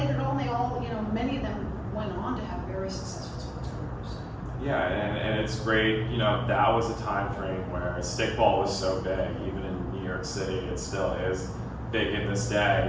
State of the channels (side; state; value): both; identical; correlation 1.00